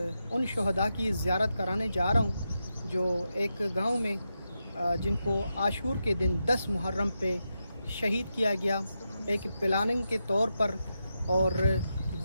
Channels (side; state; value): both; inverted; correlation -0.87